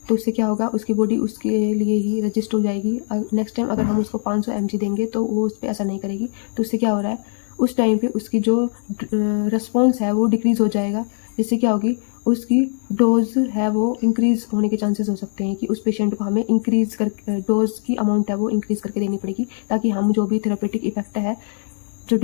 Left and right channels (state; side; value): silent; right; 58 dB below the other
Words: तो उससे क्या होगा, उसकी बॉडी उसके लिए ही रजिस्ट हो जाएगी। नेक्स्ट टाइम अगर हम उसको 500 mg देंगे तो वो उस पर असर नहीं करेगी। तो उससे क्या हो रहा है, उस टाइम पे उसकी जो रिस्पॉन्स है वो डिक्रीज़ हो जाएगा, जिससे क्या होगी, उसकी डोज है वो इंक्रीज़ होने के चांसेस हो सकते हैं कि उस पेशेंट को हमें इंक्रीज़ कर डोज की अमाउंट है वो इंक्रीज़ करके देनी पड़ेगी, ताकि हम जो भी थेरेपेटिक इफेक्ट है, जो